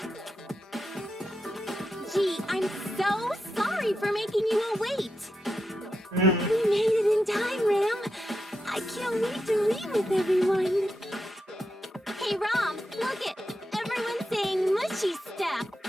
Gee, I'm so sorry for making you all wait. Mm. We made it in time, Ram. I can't wait to read with everyone. Hey, Rom, look it. Everyone's saying mushy stuff.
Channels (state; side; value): normal; both; correlation 0.86